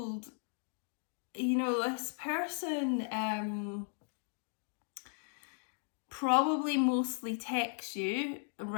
this person probably mostly texts you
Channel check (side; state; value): right; silent; 53 dB below the other